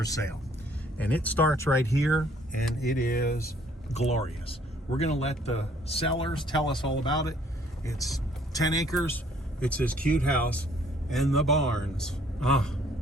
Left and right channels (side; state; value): both; normal; correlation 0.61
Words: sale. And it starts right here, and it is glorious. We're gonna let the sellers tell us all about it. It's 10 acres. It's this cute house and the barns.